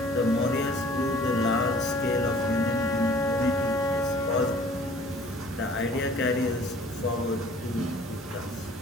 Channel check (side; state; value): both; normal; correlation 0.52